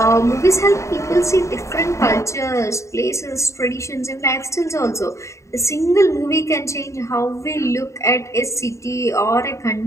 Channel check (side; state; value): right; late; 0.14 ms